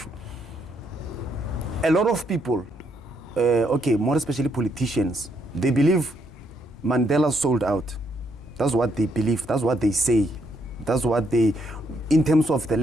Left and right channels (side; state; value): both; normal; correlation 0.74